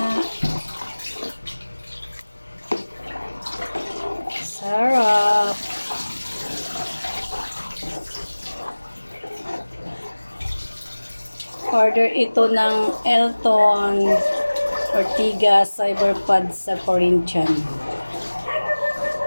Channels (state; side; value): inverted; both; correlation -1.00